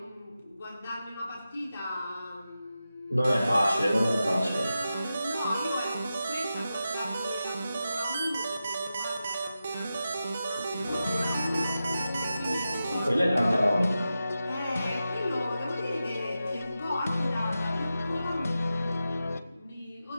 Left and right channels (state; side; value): inverted; both; correlation -0.91